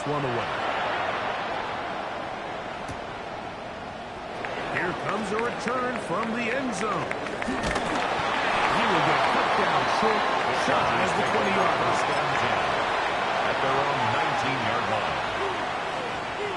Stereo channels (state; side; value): identical; both; correlation 1.00